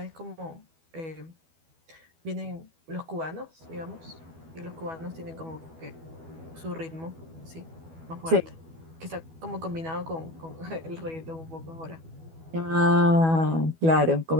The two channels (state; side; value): late; left; 12 ms